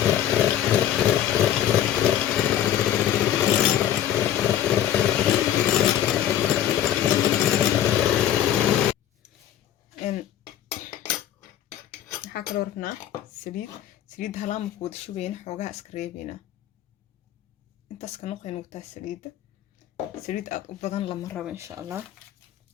ربنا سليد هلام كود شوين حوجها اسكريبينا انت اسكنوقين وتا سليد أبداً لما ربا إن شاء الله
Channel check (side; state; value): right; quieter; 11.2 dB